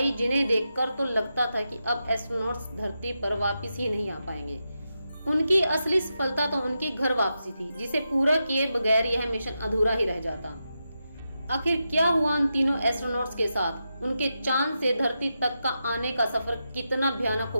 जिन्हें देखकर तो लगता था कि अब एस्ट्रोनॉट्स धरती पर वापस ही नहीं आ पाएंगे। उनकी असली सफलता तो उनकी घर वापसी थी, जिसे पूरा किए बगैर यह मिशन अधूरा ही रह जाता। आखिर क्या हुआ उन तीनों एस्ट्रोनॉट्स के साथ? उनके चांद से धरती तक का आने का सफर कितना भयानक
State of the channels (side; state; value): both; inverted; correlation -0.88